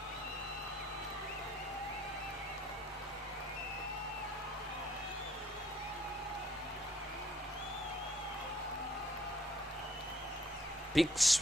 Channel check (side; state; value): both; normal; correlation 0.63